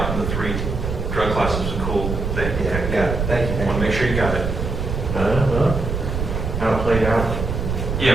in the 3 drug classes was a cool thing. Yeah, got it, thank you. I want to make sure you got it. How it played out. Yeah,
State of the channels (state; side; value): noise; right; rumble, 3 dB below the sound